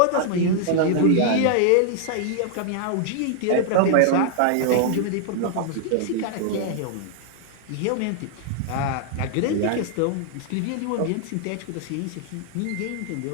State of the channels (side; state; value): both; different; correlation -0.01